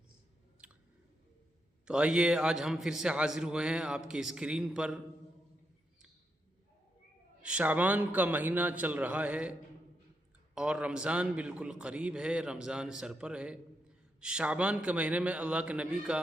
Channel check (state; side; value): normal; both; correlation 0.82